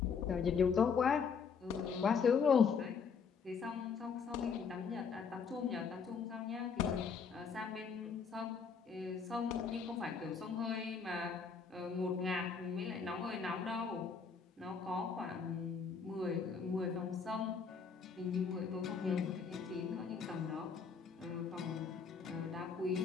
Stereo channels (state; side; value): quieter; right; 5.9 dB